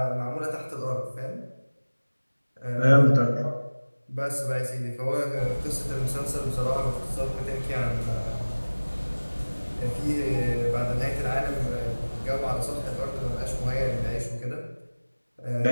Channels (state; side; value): inverted; both; correlation -1.00